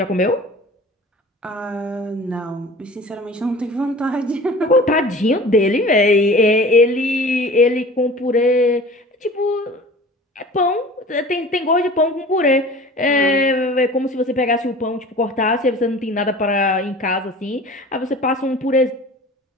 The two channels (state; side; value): normal; both; correlation 0.41